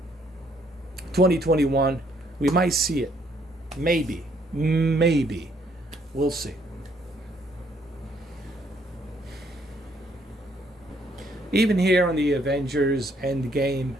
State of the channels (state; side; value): normal; both; correlation 0.68